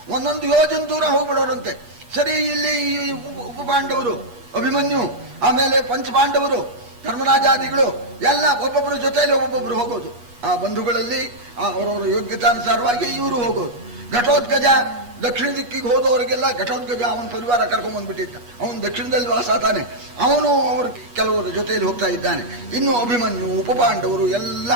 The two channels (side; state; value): left; late; 8.3 ms